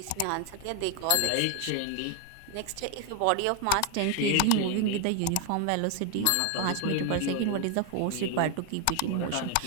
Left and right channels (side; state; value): both; different; correlation 0.01